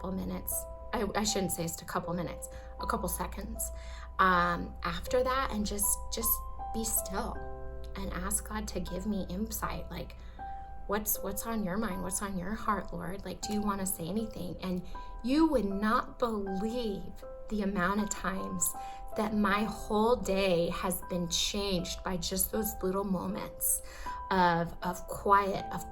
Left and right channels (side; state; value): both; identical; correlation 1.00